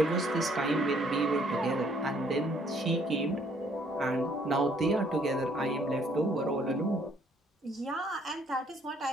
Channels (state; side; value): normal; both; correlation 0.64